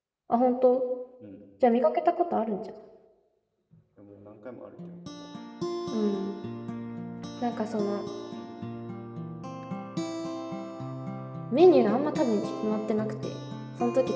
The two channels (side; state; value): both; identical; correlation 1.00